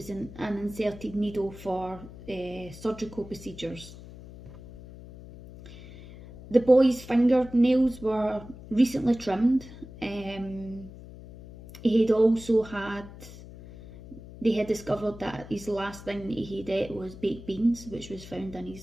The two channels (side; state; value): left; noise; hum, 16 dB below the sound